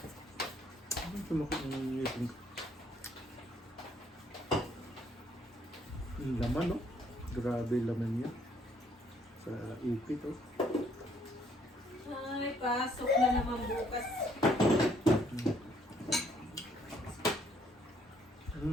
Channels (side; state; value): both; normal; correlation 0.67